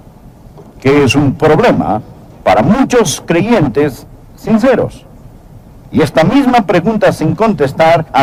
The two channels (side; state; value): both; identical; correlation 1.00